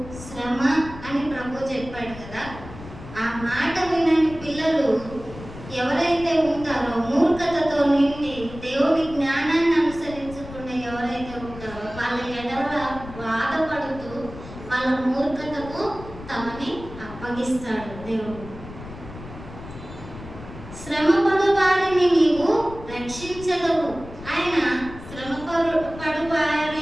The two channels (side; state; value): left; noise; rumble, 14 dB below the sound